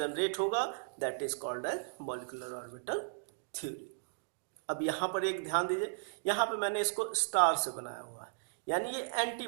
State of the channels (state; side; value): silent; left; digital silence